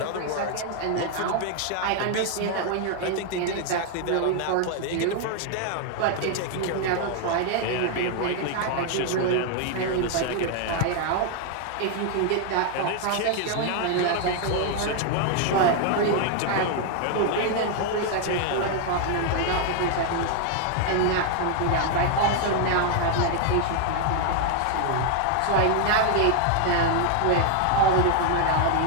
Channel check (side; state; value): both; different; correlation 0.00